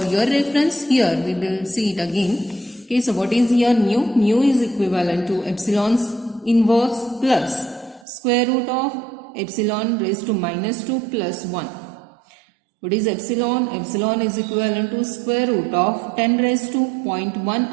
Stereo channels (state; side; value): drops out; left; at 8.1 s